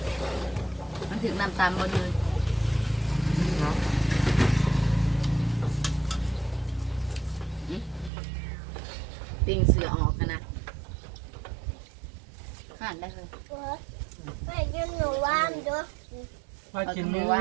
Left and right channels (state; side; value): drops out; left; at 8.1 s